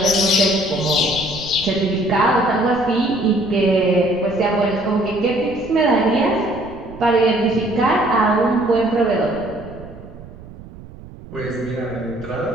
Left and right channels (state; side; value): noise; right; rumble, 17 dB below the sound